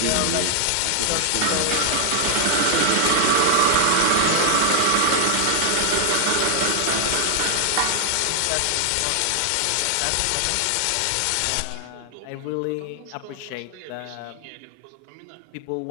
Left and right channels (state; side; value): different; both; correlation 0.00